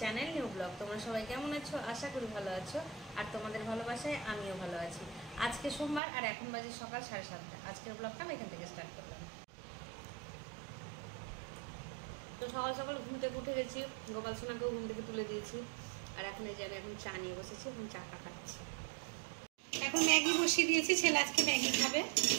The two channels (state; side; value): drops out; left; at 6.0 s